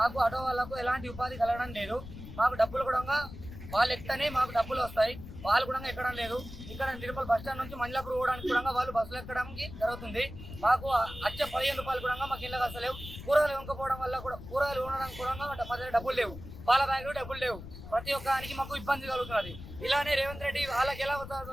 ఆటో వాళ్ళకు ఎలాంటి ఉపాధి కలగడం లేదు. మాకు డబ్బులు కూడా వాళ్ళు ఎక్కనే మాకు డబ్బులు వస్తాయి, వాళ్ళు కూడా ఎక్కడం లేదు. ఇక్కడ నిర్మల్ బస్ స్టాండ్ నుంచి మంజలాపూర్ పోవడానికి కూడా వాళ్ళు బస్సులు ఎక్కడానికి జరుగుతుంది. మాకు వచ్చే 15 రూపాయలు కూడా మాకు ఇళ్ళకి వస్తలేవు. కూరగాయలు వంకపోవడం వల్ల కూడా కూరగాయలు ఉండడానికి కూడా మా దగ్గర డబ్బులు లేవు, పాల బ్యాగులు డబ్బులు లేవు. ప్రతి ఒక్కరికి మాకు ఇబ్బంది కలుగుతున్నది. ఇలానే రేవంత్ రెడ్డి వాళ్ళకి ఎలా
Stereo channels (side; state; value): left; noise; rumble, 12 dB below the sound